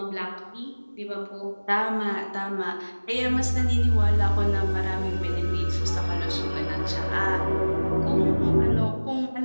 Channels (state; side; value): inverted; both; correlation -1.00